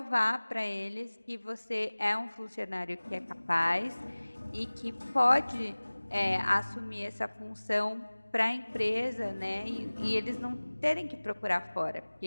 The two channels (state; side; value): inverted; both; correlation -1.00